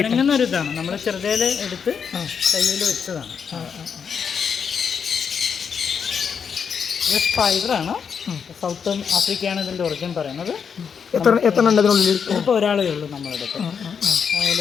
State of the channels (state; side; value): quieter; right; 6.7 dB